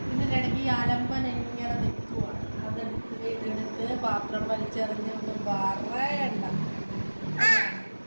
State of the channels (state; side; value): inverted; both; correlation -1.00